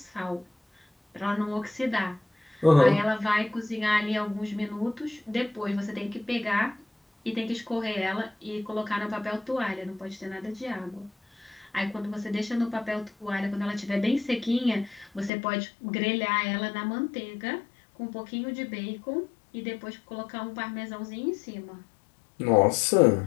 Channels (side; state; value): right; drops out; at 15.3 s